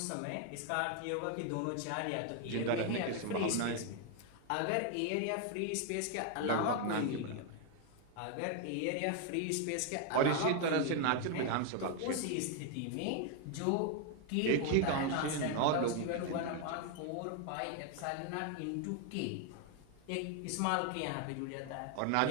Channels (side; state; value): both; different; correlation 0.00